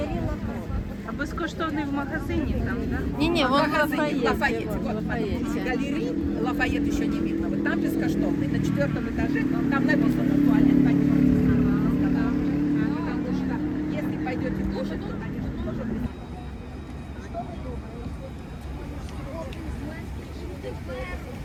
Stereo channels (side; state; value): both; identical; correlation 1.00